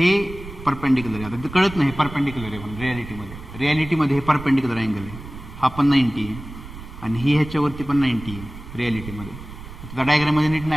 परपेंडिक्युलर आहे. आता कळत नाही परपेंडिक्युलर आहे पण रियालिटीमध्ये हे परपेंडिक्युलर अँगल आहे. हा पण 90 आहे आणि ही ह्याच्यावरती पण 90 आहे रियालिटीमध्ये. आता डायग्राममध्ये नीट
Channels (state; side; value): noise; right; rumble, 13 dB below the sound